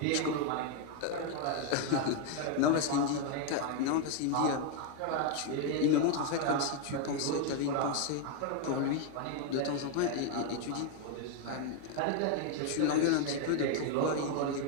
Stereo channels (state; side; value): different; both; correlation 0.01